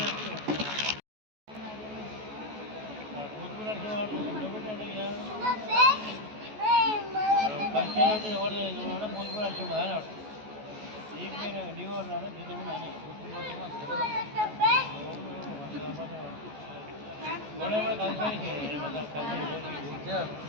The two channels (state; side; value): late; left; 14 ms